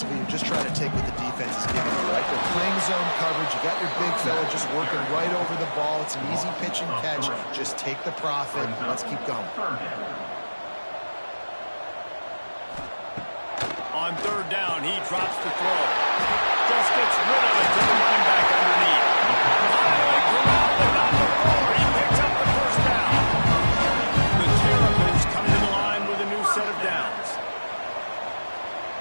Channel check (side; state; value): both; inverted; correlation -1.00